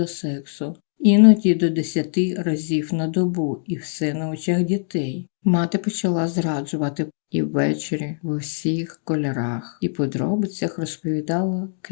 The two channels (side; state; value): right; silent; digital silence